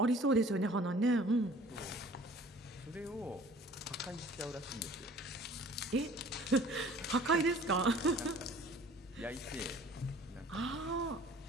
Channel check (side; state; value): both; normal; correlation 0.50